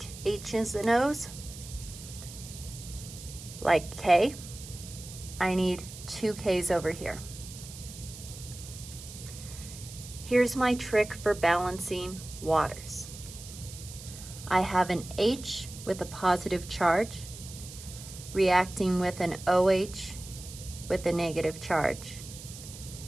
H's and O's. Like K, I need 2 K's over here. Here's my trick for balancing waters. I have an H with a positive charge reacting with an OH with a negative charge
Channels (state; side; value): noise; right; hiss, 14 dB below the sound